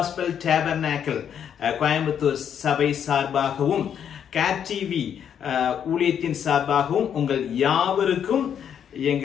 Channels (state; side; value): quieter; right; 8.6 dB